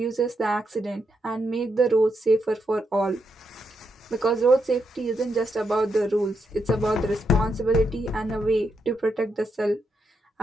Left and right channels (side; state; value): both; normal; correlation 0.82